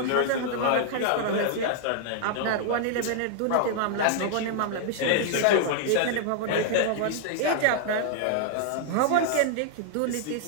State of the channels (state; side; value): different; both; correlation -0.01